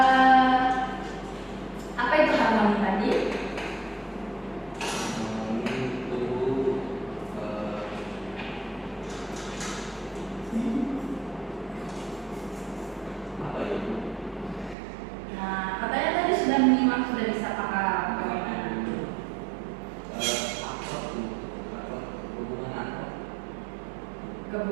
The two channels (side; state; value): left; drops out; at 14.8 s